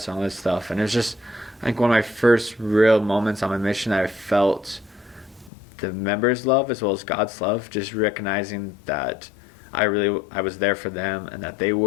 and all this stuff. And it was just, I think, one of my first real moments on my mission that I felt the members' love as well as God's love, just recognizing that I was there for them and that they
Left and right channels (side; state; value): right; drops out; at 5.5 s